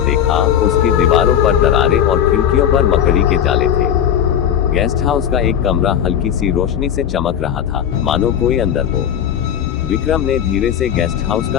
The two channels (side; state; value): right; quieter; 9.4 dB